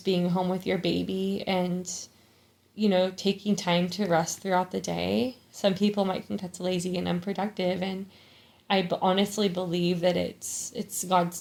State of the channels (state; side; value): identical; both; correlation 1.00